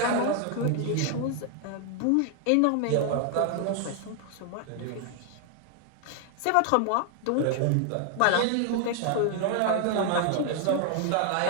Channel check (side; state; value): both; different; correlation 0.00